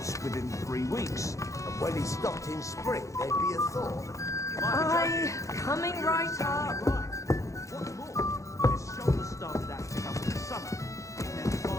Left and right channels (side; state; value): right; late; 0.15 ms